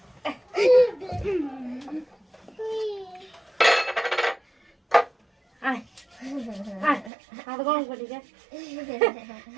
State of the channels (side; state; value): left; drops out; at 7.1 s